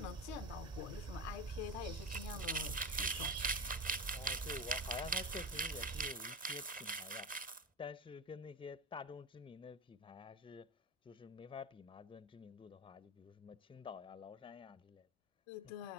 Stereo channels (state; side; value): normal; both; correlation 0.22